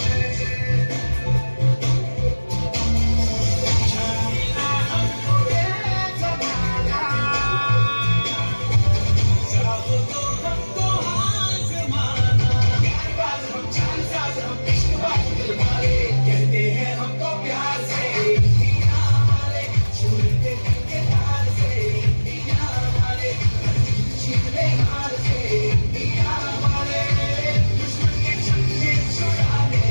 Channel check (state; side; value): inverted; both; correlation -1.00